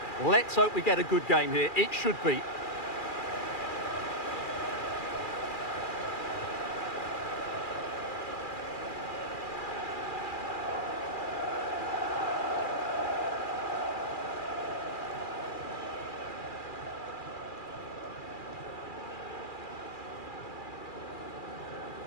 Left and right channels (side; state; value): right; late; 2.4 ms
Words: Let's hope we get a good game here. It should be.